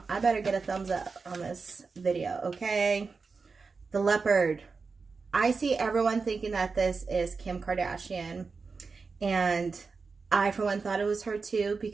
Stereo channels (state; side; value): quieter; left; 4.6 dB